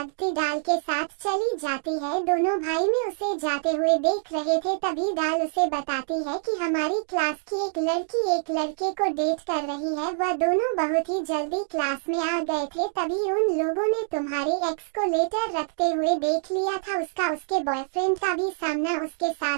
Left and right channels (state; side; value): silent; left; digital silence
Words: डाल के साथ चली जाती है। दोनों भाई में उसे जाते हुए देख रहे थे। तभी डाल उसे बताती है कि हमारी क्लास की एक लड़की एक लड़के को डेट कर रही है। वह दोनों बहुत ही जल्दी क्लास में आ गए थे। तभी उन लोगों ने तुम्हारे एक्स को लेटर रखते हुए देख लिया था। उसका उसके बॉयफ्रेंड का भी सामना उसके